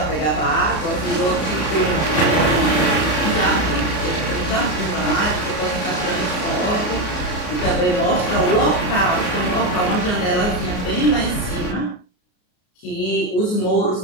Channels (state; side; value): late; right; 33 ms